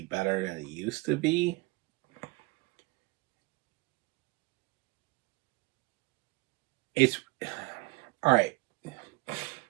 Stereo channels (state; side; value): quieter; left; 23.5 dB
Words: better than it used to be. It's all right.